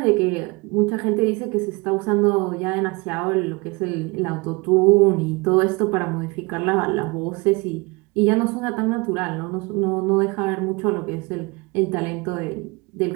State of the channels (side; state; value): left; quieter; 26.5 dB